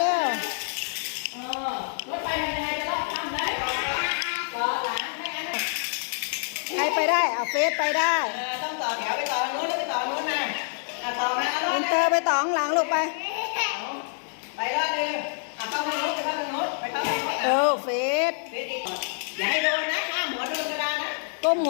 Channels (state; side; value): silent; right; 60 dB below the other